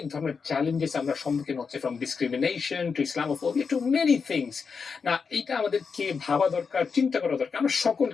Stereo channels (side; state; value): right; quieter; 5.5 dB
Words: ধরনের চ্যালেঞ্জেস আমরা সম্মুখীন হচ্ছে, from discrimination to Islamophobia to many things. না, এটা আমাদেরকে ভাবা দরকার, চিন্তা করা দরকার আমরা